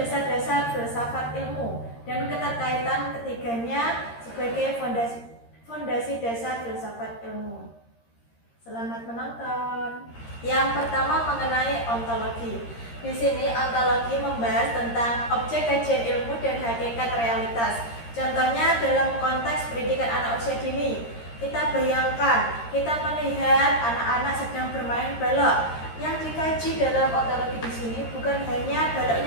filsafat ilmu dan keterkaitan ketiganya sebagai fondasi dasar filsafat ilmu. Selamat menonton. Yang pertama mengenai ontologi. Di sini ontologi membahas tentang objek kajian ilmu dan hakikat realitas. Contohnya dalam konteks pendidikan anak usia dini. Kita bayangkan, kita melihat anak-anak sedang bermain balok. Yang dikaji dalam ontologi di sini bukan hanya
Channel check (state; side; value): late; right; 13 ms